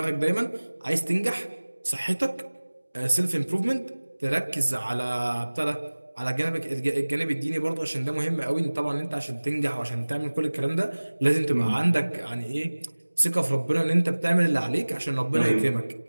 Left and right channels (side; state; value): both; inverted; correlation -1.00